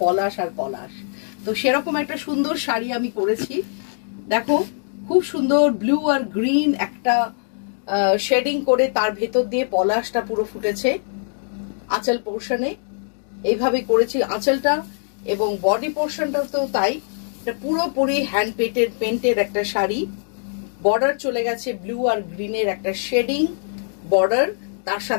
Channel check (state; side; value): silent; right; digital silence